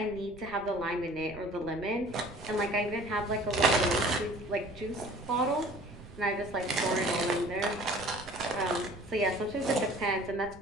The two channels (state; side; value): noise; right; rumble, 19 dB below the sound